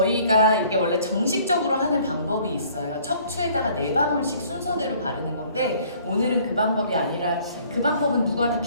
이게 원래 정식적으로 하는 방법이 있어요. 척추에다가 4방울씩 순서대로 바르는 건데, 오늘은 그 방법이 아니라, 그 방법은 누구한테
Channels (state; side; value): inverted; both; correlation -0.57